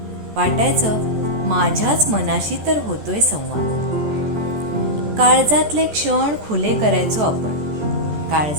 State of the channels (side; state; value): left; late; 14 ms